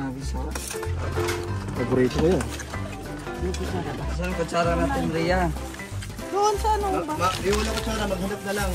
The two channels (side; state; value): both; identical; correlation 1.00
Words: sa. Paborito ko yan. Saan kutsara natin, Rhea? Doon sa ano ba? Di wala ko sana, maghanap na lang.